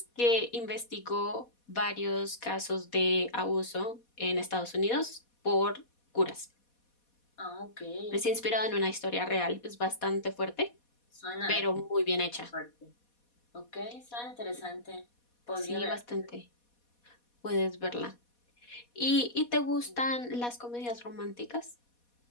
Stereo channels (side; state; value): right; late; 4.2 ms